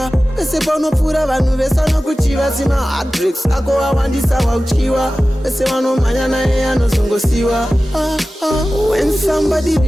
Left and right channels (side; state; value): both; normal; correlation 0.96